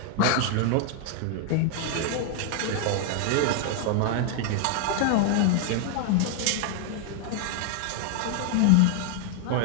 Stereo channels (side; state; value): both; different; correlation 0.00